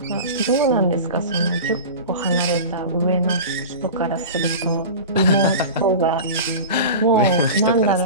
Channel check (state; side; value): inverted; both; correlation -0.31